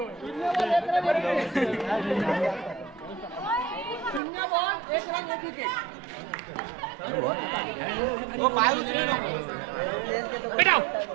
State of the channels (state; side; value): drops out; left; at 4.2 s